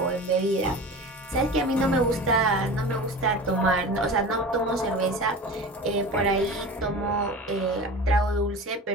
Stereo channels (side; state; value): both; normal; correlation 0.34